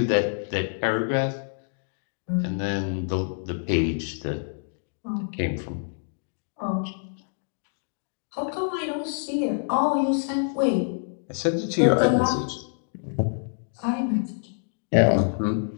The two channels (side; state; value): right; silent; digital silence